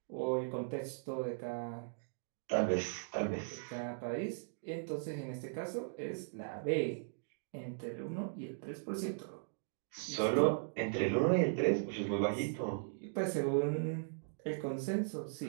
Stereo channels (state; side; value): silent; left; digital silence